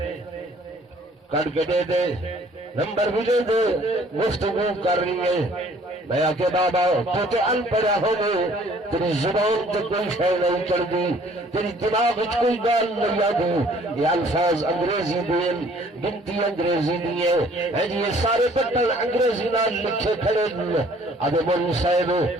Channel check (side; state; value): both; normal; correlation 0.57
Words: کٹ کے دے دے، نمبر بھی دے دے، گفتگو کر رہی ہے۔ میں آکے بابا تو تے ان پڑھا ہو گئے، تیری زبان تے کوئی شے نہیں چڑھ دی، تیری دماغ وچ کوئی گال نہیں آدی، یہ الفاظ انگریزی دین، گنتی انگریزی دیے ہے جی، یہ سارے بٹن انگریزی نال لکھے کھڑے ادے مول صاحب